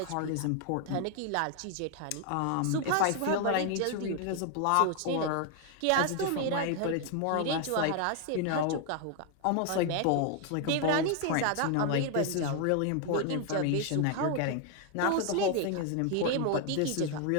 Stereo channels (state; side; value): different; both; correlation 0.00